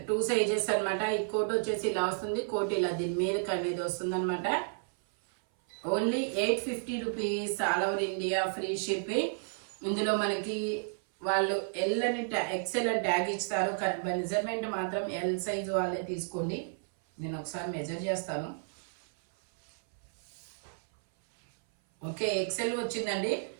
2 సైజెస్ అన్నమాట. ఈ కోట్ వచ్చేసి ఇలా వస్తుంది. కోట్ ఇలా దీని మీదకి అనేది వస్తుంది అనమాట. Only 850 rupees, all over India free shipping. ఇందులో మనకి వాళ్ళు ఎల్ అని ఎక్స్ఎల్ అని ట్యాగ్ ఇస్తారు. కానీ మెజర్మెంట్ మాత్రం ఎల్ సైజు వాళ్ళే తీసుకోండి. నేను ఒకసారి మెజర్ చేస్తాను. ఓకే, ఎక్స్ఎల్ వచ్చిందండి.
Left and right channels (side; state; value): left; silent; 56 dB below the other